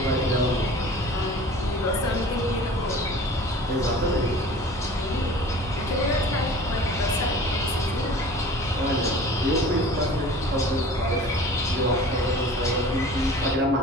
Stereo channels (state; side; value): normal; both; correlation 0.43